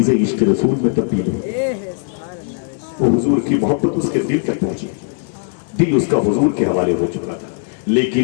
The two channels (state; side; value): silent; right; 67 dB below the other